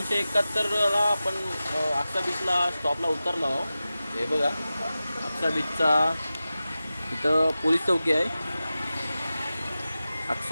आपण आक्सा बीचला स्टॉपला उतरलो आहोत. हे बघा आक्सा बीचचा इथं पोलीस चौकी आहे.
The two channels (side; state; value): both; inverted; correlation -0.94